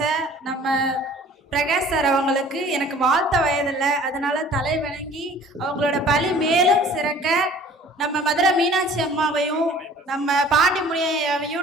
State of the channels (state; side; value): normal; both; correlation 0.50